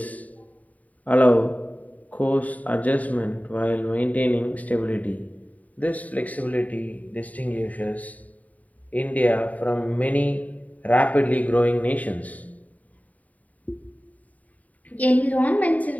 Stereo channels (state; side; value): late; right; 0.071 ms